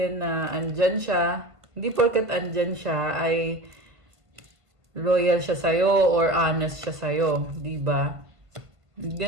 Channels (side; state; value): left; late; 1.5 ms